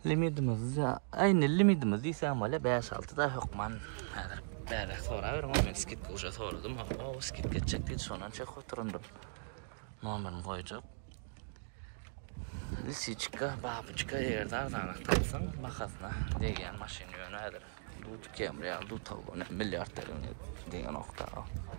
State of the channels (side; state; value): left; silent; digital silence